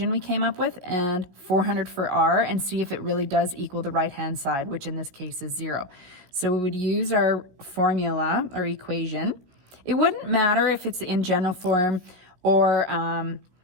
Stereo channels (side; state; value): left; late; 17 ms